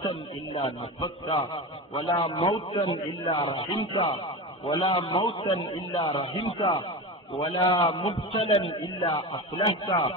إلا نفسته، ولا موتا إلا رحمته، ولا موتا إلا رحمته، ولا مبتلا إلا أصلحته،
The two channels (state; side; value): normal; both; correlation 0.25